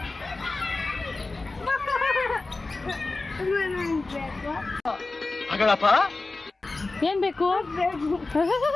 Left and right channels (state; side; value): quieter; right; 3.4 dB